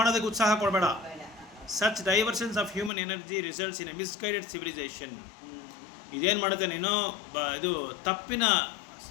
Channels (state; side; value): drops out; right; at 2.9 s